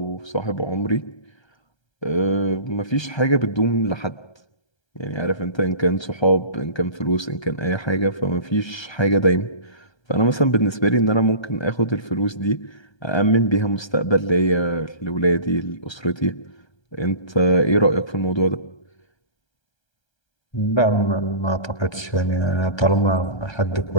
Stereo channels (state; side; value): late; right; 1.3 ms